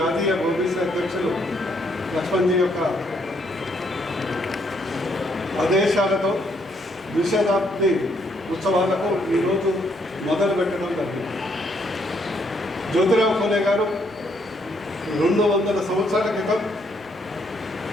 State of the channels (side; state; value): both; normal; correlation 0.71